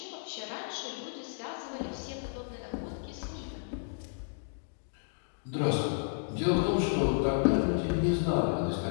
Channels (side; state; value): right; silent; digital silence